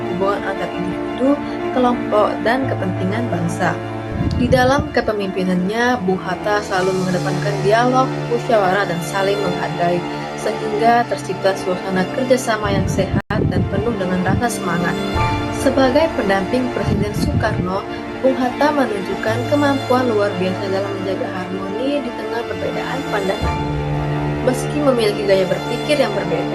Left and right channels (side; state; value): both; identical; correlation 1.00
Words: hubungan antar individu, kelompok, dan kepentingan bangsa. Di dalam kepemimpinannya, Bung Hatta selalu mengedepankan dialog, musyawarah, dan saling menghargai, sehingga tercipta suasana kerjasama yang sehat dan penuh dengan rasa semangat. Sebagai pendamping Presiden Soekarno, Bung Hatta menunjukkan kemampuan luar biasa dalam menjaga harmoni di tengah perbedaan pandangan. Meski memiliki gaya berpikir yang